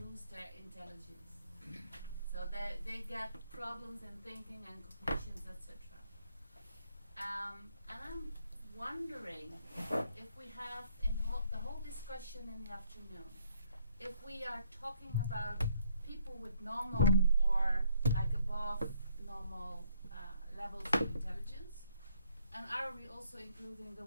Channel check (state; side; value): inverted; both; correlation -0.68